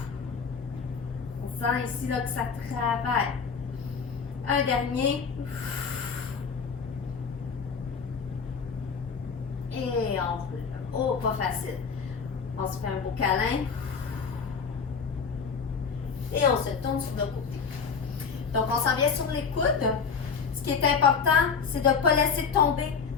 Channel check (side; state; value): right; quieter; 5.8 dB